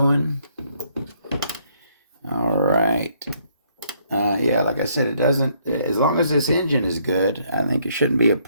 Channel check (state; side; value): inverted; both; correlation -0.69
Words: All right. Yeah, like I said, it doesn't, as long as this engine is good, I think it shouldn't be a